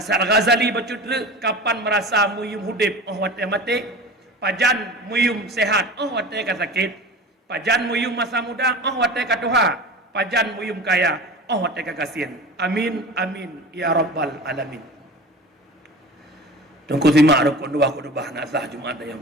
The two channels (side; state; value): both; normal; correlation 0.35